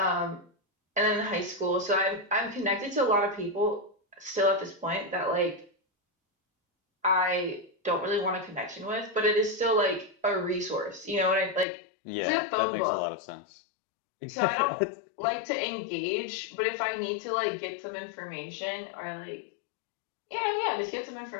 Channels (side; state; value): right; drops out; at 11.7 s